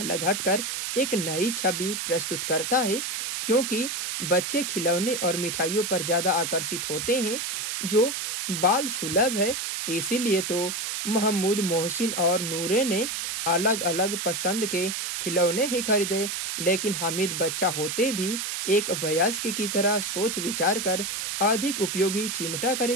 हटकर एक नई छवि प्रस्तुत करता है, क्योंकि बच्चे खिलौने और मिठाइयों पर ज्यादा आकर्षित होते हैं जो बाल सुलभ है। इसीलिए तो महमूद, मोहसिन और नूरे ने अलग अलग पसंद के खिलौने ही खरीदे, लेकिन हामिद बच्चा होते भी एक वयस्क की तरह सोच विचार कर अधिक उपयोगी चिमटा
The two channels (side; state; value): right; noise; hiss, 3 dB below the sound